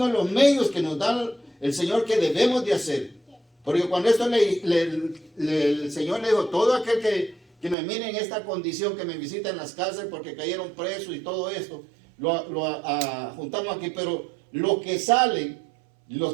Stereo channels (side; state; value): left; drops out; at 7.8 s